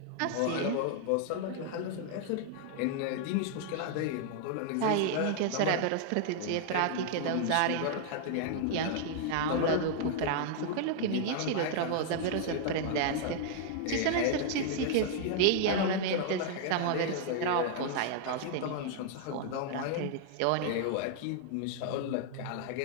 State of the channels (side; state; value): both; different; correlation -0.01